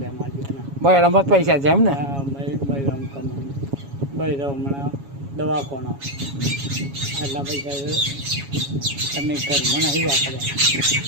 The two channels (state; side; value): late; left; 7.2 ms